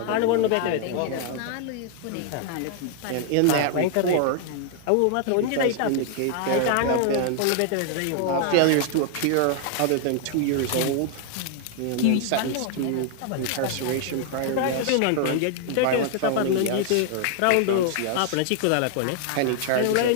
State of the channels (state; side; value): different; both; correlation 0.00